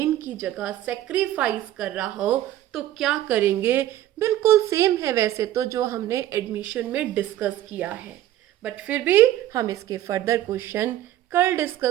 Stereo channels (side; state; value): left; quieter; 13.2 dB